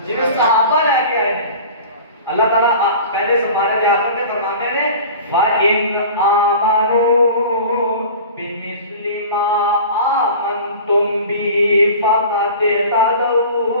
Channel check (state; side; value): inverted; both; correlation -0.39